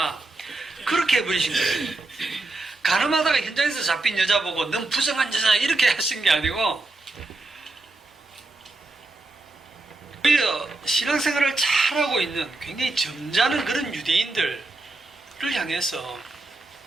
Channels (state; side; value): quieter; left; 3.2 dB